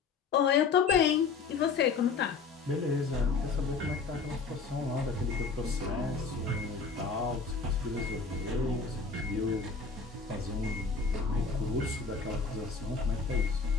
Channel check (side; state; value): right; quieter; 4.8 dB